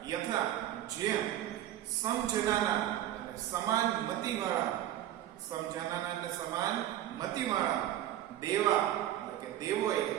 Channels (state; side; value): quieter; left; 12.6 dB